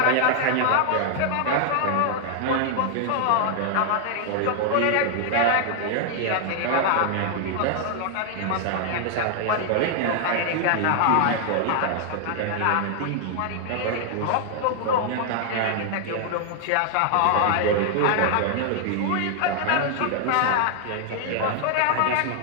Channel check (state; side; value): different; both; correlation 0.00